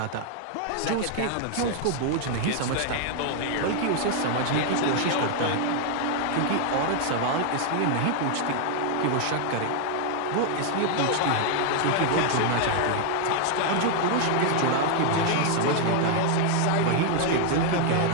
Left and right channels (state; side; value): different; both; correlation 0.00